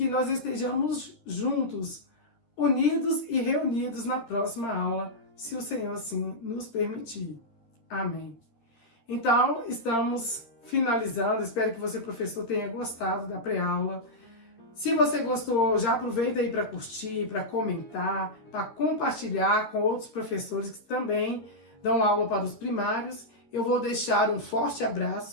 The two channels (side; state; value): right; late; 13 ms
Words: nós estejamos juntos, unidos e reunidos na próxima aula, se o Senhor assim nos permitir. Amém. Então, estamos finalizando. Espero que você, professor, tenha gostado da pré-aula. Se você gostou, já aproveita aí para curtir, para comentar, para compartilhar com outros professores que também dão aula para os primários. Eu vou deixar um forte